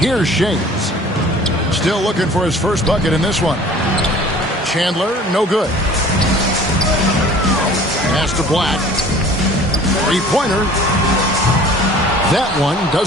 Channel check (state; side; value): normal; both; correlation 0.48